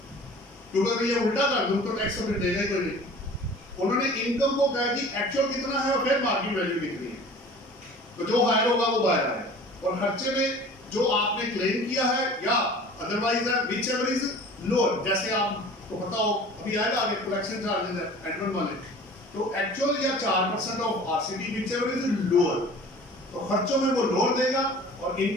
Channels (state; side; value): normal; both; correlation 0.44